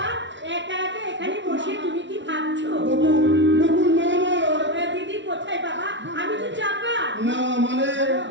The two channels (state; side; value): late; left; 0.54 ms